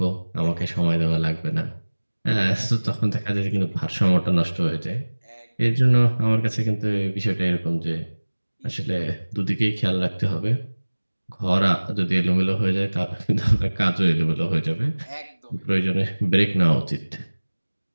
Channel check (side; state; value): both; inverted; correlation -1.00